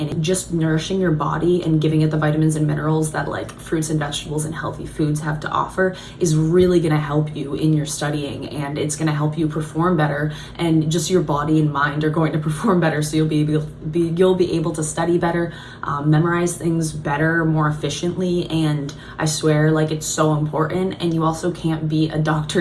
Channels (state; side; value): identical; both; correlation 1.00